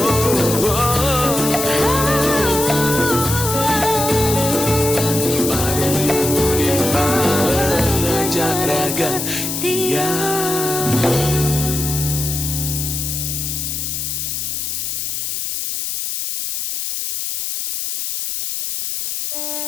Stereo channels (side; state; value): left; noise; hiss, 3 dB below the sound